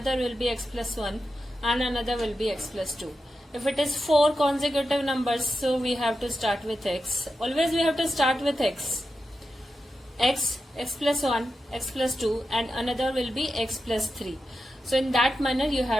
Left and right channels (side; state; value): both; normal; correlation 0.90